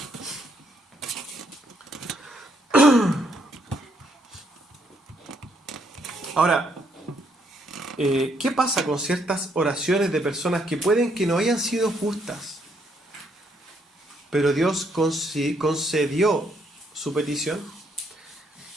Ahora, ¿qué pasa con ciertas oraciones de personas que pueden que no hayan sido justas, pero Dios concedió su petición?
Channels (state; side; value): normal; both; correlation 0.72